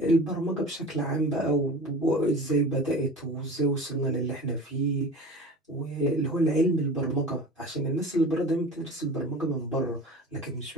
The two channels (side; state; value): both; normal; correlation 0.36